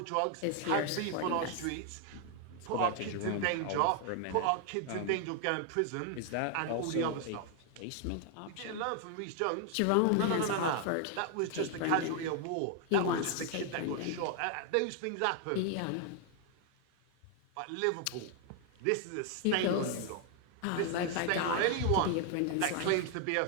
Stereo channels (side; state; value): both; different; correlation 0.00